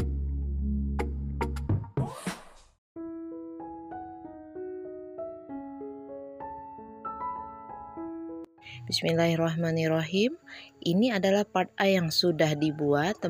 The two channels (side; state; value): both; identical; correlation 1.00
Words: Bismillahirrahmanirrahim. Ini adalah part A yang sudah dibuat